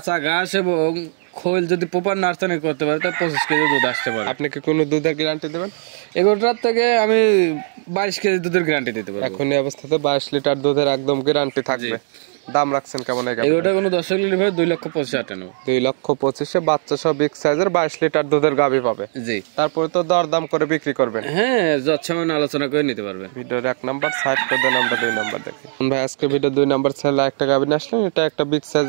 ঘাস এবং খোল যদি প্রপার নার্সারি করতে পারে তাহলে 25 কেজি দুধ আসতে পারে। আপনি কি কোনো দুধের গ্যারান্টি দেবেন? এগুলোটার থেকে আমি 22 কেজি দুধের গ্যারান্টি দিতে পারবো। এখন এই অবস্থাতে 22 লিটার দুধের একদম গ্যারান্টি থাকবে। দাম রাখছেন কেমন? এগুলোটা কোনো দর্শক নিলে ভাই 2,25,000 নেব। 2,25,000 বাচ্চা সহ বিগ সাইজের 22 লিটার দুধের গাভী পাবে। জি। তারপরে তো দরদাম করে বিক্রি করবেন। হ্যাঁ, যৎসামান্য আলোচনা করে নিতে পারবে। ভিডিওর 1 নাম্বার সাইড করে দেন, আমরা 2 নাম্বার দেখি। ভাই আজকে ভিডিও 2 নাম্বার ছেলে একটা গাভী নিয়ে আসলেন, এটা একটা বিগ সাইজ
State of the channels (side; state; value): left; silent; digital silence